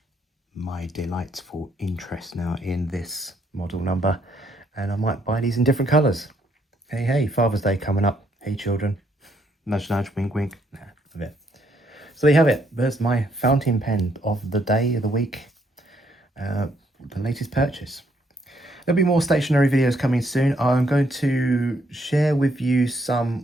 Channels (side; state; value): both; normal; correlation 0.71